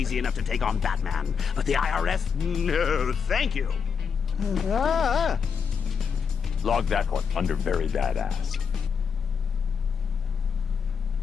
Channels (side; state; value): right; quieter; 6.4 dB